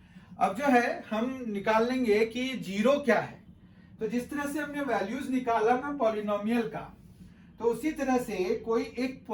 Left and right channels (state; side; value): identical; both; correlation 1.00